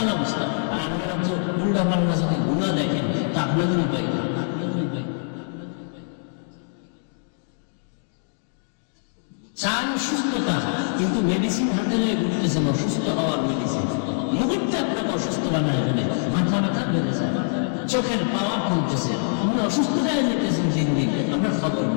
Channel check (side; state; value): right; silent; digital silence